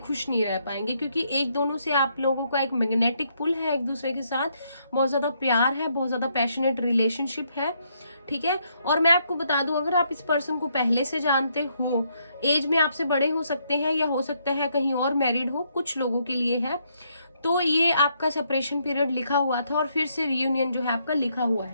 नहीं रह पाएंगे। क्योंकि एक दोनों से आप लोगों का एक मैग्नेटिक पुल है एक दूसरे के साथ, बहुत ज्यादा प्यार है, बहुत ज्यादा पैशनेट रिलेशनशिप है, ठीक है। और मैं आपको बता दूं, अगर आप इस पर्सन को पहले से जानते हो, एज में आपसे बड़े हो सकते हैं या हो सकता है कहीं और मैरिड हो, कुछ लोगों के लिए है, तो ये आपका सेपरेशन पीरियड लिखा हुआ था और फिर से रियूनियन जो है आपका लिखा हुआ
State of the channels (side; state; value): both; inverted; correlation -0.74